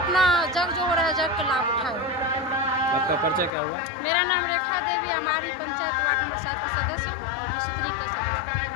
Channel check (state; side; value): drops out; right; at 3.5 s